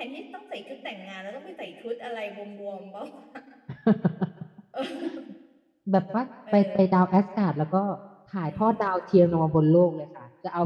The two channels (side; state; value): both; identical; correlation 1.00